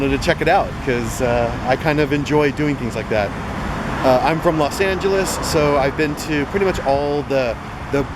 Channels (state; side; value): identical; both; correlation 1.00